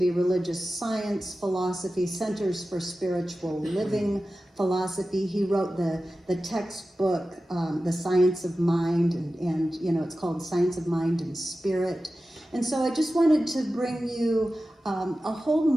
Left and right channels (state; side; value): normal; both; correlation 0.94